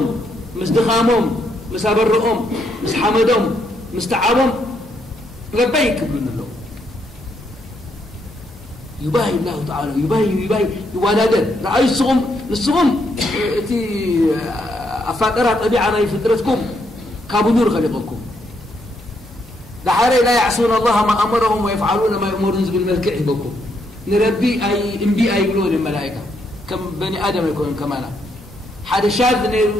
مستخامهم مسابرهم مسحمدهم مستعابهم لبيك ابن الله يباهي الله تعالى يباهي يوالدن رأي الصغم تي أفاقرها طبيعنا فطرتكم كابنور خلقكم دحاري لا يعصون الله ما أمرهم ويفعلون ما يأمرون بالملك بكم نربي أي انبي أي يقولون الملائكة كم بني آدم يكون كمانا حد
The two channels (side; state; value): both; normal; correlation 0.76